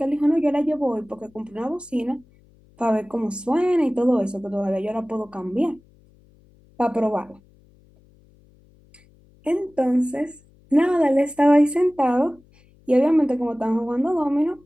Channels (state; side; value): noise; left; hum, 30 dB below the sound